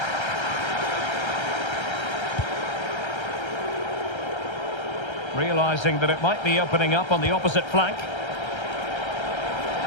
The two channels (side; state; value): right; late; 1.3 ms